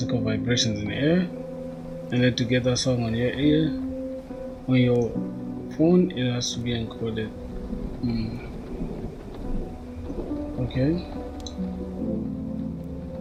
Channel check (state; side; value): identical; both; correlation 1.00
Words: vibrations in the air, and then to get that song on your ear, on your phone, it has to be encoded. Okay.